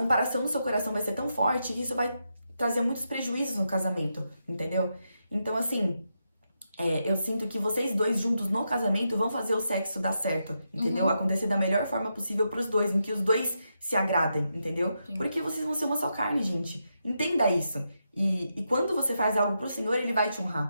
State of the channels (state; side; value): inverted; both; correlation -0.84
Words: no seu coração vai ser tão forte que isso vai trazer muitos prejuízos no casamento, entendeu? Então, assim, eu sinto que vocês dois juntos no casamento vão fazer o sexo dar certo, entendeu? Acontecer da melhor forma possível pros dois, em que os dois se agradem, entendeu? Sim. Porque vocês vão ser uma só carne, gente. Entenda isso. E quando você faz algo pro Senhor, Ele vai te